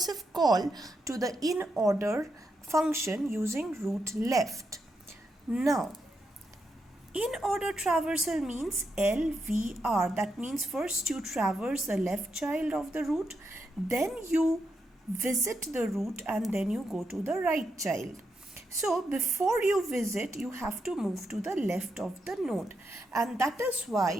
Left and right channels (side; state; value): both; normal; correlation 0.83